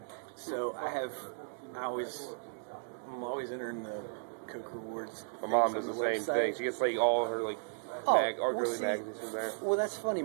so I'm always entering the Coke Rewards. My mom does the same thing. She gets like all her like girly magazines in there. Well, that's funny.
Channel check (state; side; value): silent; left; digital silence